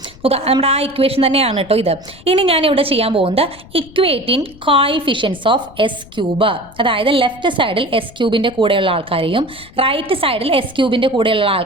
നോക്കുക, നമ്മുടെ ആ ഇക്വേഷൻ തന്നെയാണ് കേട്ടോ ഇത്. ഇനി ഞാൻ ഇവിടെ ചെയ്യാൻ പോകുന്നത് equating coefficients of S cube, അതായത് ലെഫ്റ്റ് സൈഡിൽ എസ് ക്യൂബിൻ്റെ കൂടെയുള്ള ആൾക്കാരെയും റൈറ്റ് സൈഡിൽ എസ് ക്യൂബിൻ്റെ കൂടെയുള്ള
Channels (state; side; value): noise; left; rumble, 22 dB below the sound